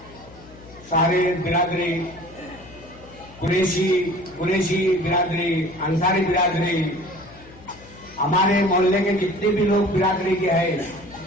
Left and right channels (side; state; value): left; noise; hum, 21 dB below the sound